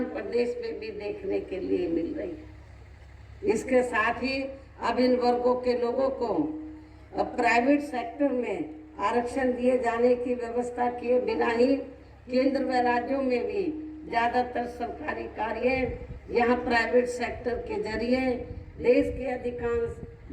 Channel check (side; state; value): both; identical; correlation 1.00